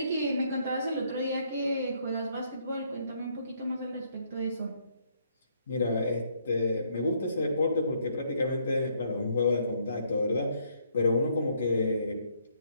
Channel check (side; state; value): both; inverted; correlation -0.69